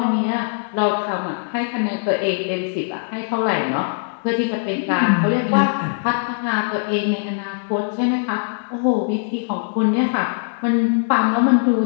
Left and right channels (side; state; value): right; silent; digital silence